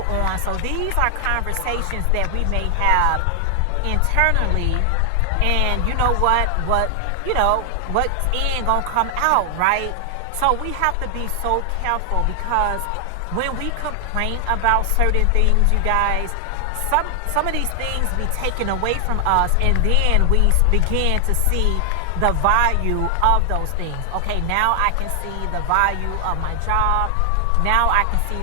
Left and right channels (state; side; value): different; both; correlation 0.00